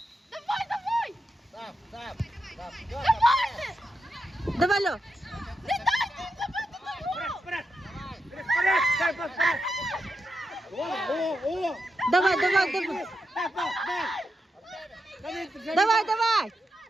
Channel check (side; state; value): both; normal; correlation 0.86